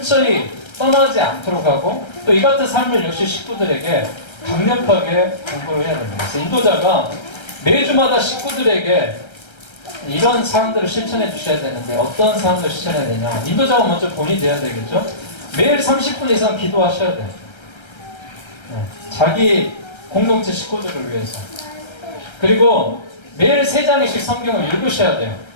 떠나지 않도록 하고 또 이 같은 삶을 역시 식구들에게 강력하게 공부를 해야 됩니다. 그래서 인도자가 매주마다 식구들에게 이런 사항들을 실천해 주셔야 되는데 어떤 사항들을 실천해야 되냐. 인도자가 먼저 본이 돼야 되겠죠. 매일 30분 이상 기도하셔야 돼요. 네, 자기 공동체 식구들을 위해서. 그리고 매일 3장씩 성경을 읽으셔야 돼요.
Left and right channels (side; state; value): right; late; 1.3 ms